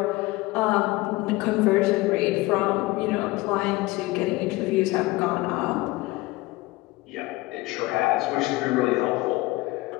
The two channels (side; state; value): right; quieter; 20.6 dB